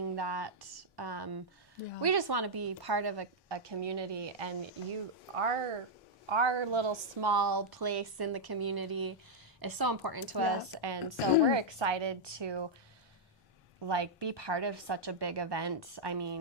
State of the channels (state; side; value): normal; both; correlation -0.04